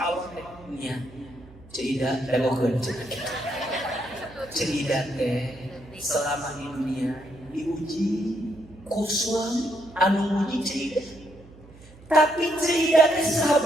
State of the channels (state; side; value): noise; right; hum, 22 dB below the sound